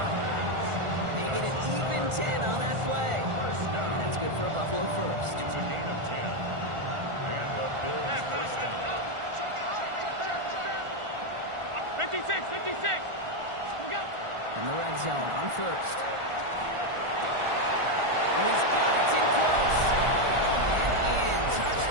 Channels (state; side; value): late; left; 1.4 ms